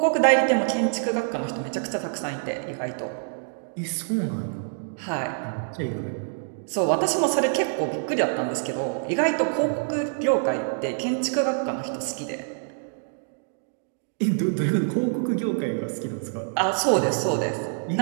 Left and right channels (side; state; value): left; silent; digital silence